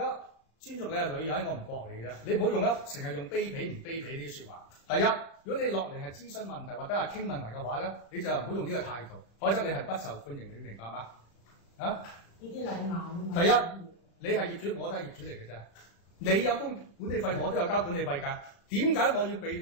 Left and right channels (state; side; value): late; right; 35 ms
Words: 尊重你係女人，我唔駁你嘅啫。你唔好用成日用卑鄙唔卑鄙呢啲説話。第一，如果你落嚟係諮詢問題或者係傾問題嘅話咧，你就唔好用呢個態度，否則你係不受歡迎，你明白嗎？啊？呢啲禮貌。第一，你係業主，我都係業主嚟嘅啫。你有供管理費，我都有交管理費㗎。點解我要